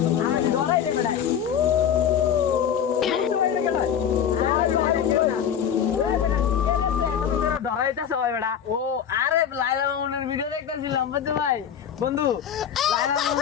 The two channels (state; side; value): quieter; right; 8.5 dB